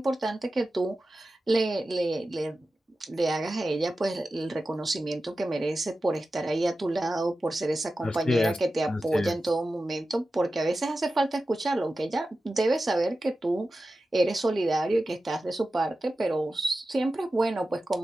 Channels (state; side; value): normal; both; correlation 0.93